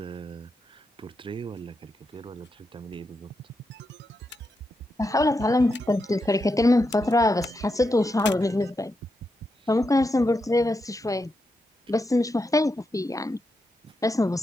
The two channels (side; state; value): both; normal; correlation 0.85